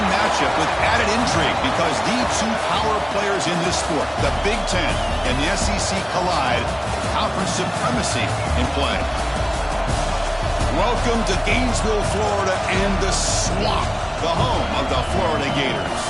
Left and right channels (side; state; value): both; identical; correlation 1.00